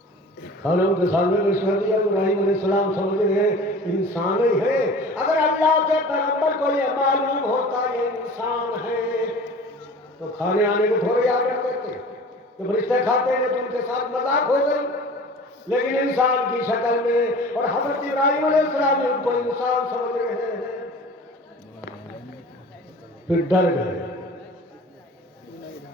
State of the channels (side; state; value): both; normal; correlation 0.41